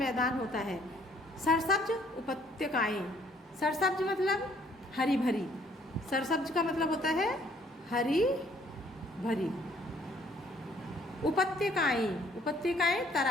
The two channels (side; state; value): both; normal; correlation 0.62